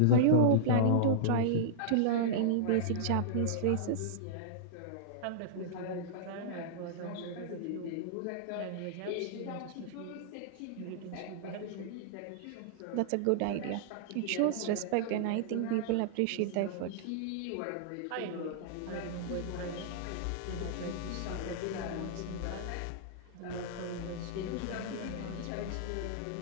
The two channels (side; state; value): both; different; correlation -0.02